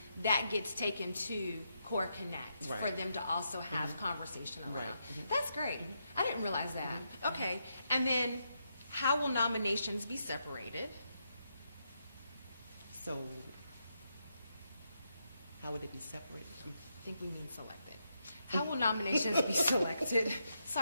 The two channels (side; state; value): both; inverted; correlation -0.82